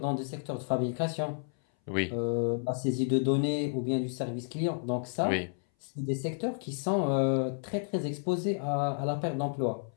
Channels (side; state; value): right; silent; 57 dB below the other